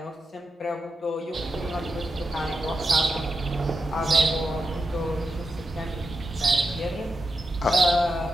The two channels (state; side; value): normal; both; correlation 0.87